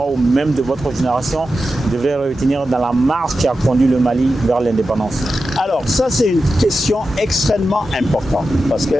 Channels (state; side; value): normal; both; correlation 0.91